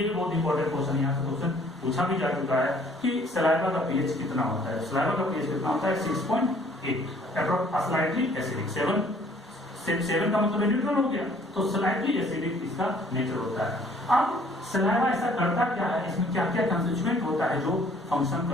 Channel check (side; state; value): both; normal; correlation 0.58